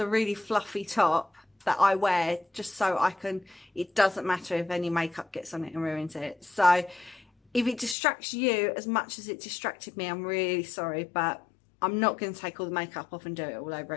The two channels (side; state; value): right; drops out; at 8.0 s